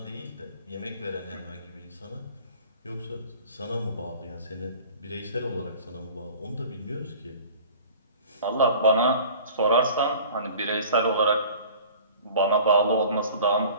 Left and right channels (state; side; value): inverted; both; correlation -0.45